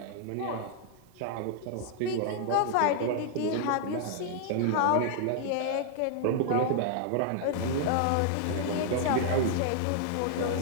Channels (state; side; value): different; both; correlation 0.00